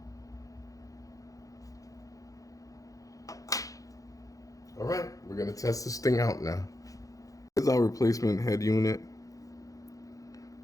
All right, we're gonna test this thing out now. Here's our replacement head unit.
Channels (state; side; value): late; right; 0.17 ms